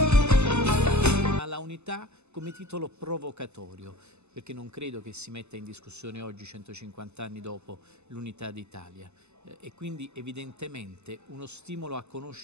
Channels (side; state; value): left; late; 0.81 ms